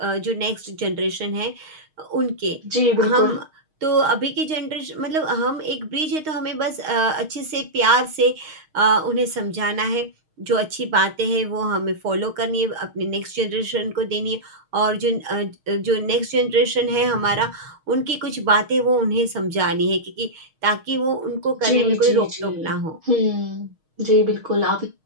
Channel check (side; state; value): left; late; 6.4 ms